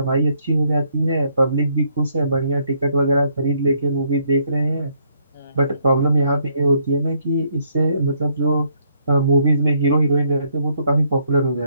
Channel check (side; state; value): both; inverted; correlation -0.70